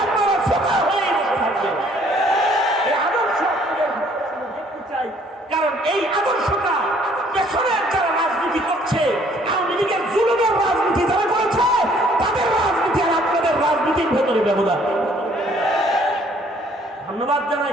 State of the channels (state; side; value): normal; both; correlation 0.61